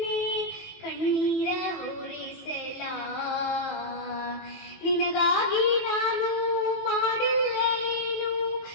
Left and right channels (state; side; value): late; right; 19 ms